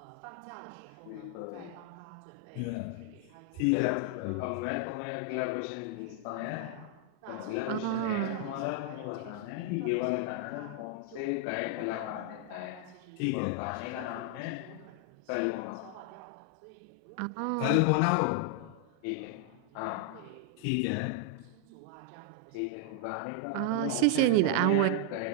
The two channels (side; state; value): both; different; correlation 0.00